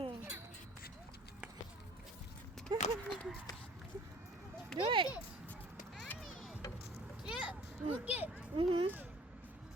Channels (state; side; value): normal; both; correlation 0.51